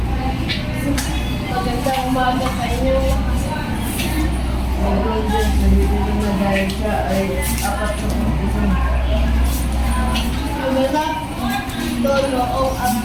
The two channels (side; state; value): both; identical; correlation 1.00